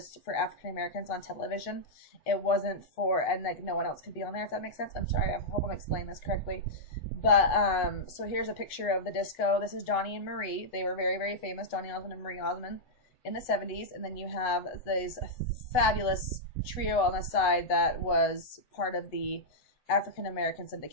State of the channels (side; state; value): right; late; 8.0 ms